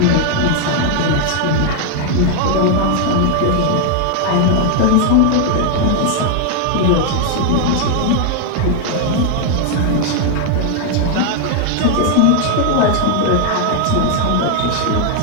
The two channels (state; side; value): different; both; correlation 0.00